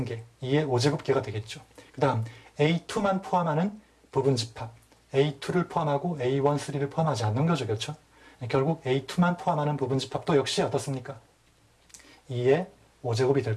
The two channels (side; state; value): both; identical; correlation 1.00